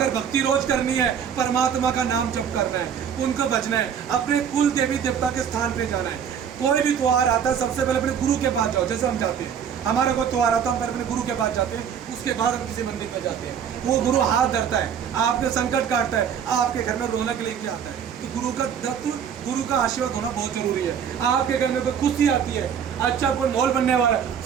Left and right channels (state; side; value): quieter; left; 8.0 dB